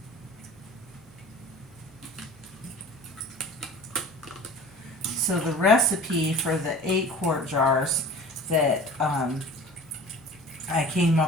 So the recipe for the 8 quart jars that I came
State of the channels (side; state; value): right; noise; hum, 26 dB below the sound